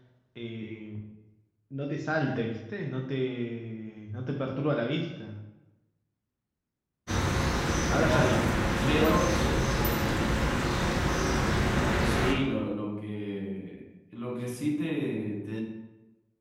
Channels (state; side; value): identical; both; correlation 1.00